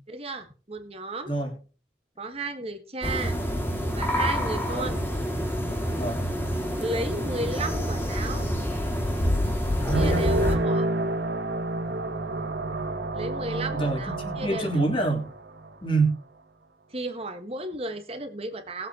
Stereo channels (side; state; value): both; normal; correlation 0.64